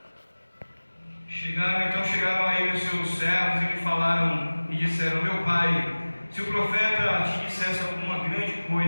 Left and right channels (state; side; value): inverted; both; correlation -1.00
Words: a ele os seus servos e lhe falaram e disseram: meu pai, se o profeta te dissesse alguma grande